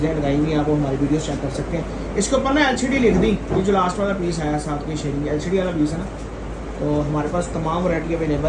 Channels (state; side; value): identical; both; correlation 1.00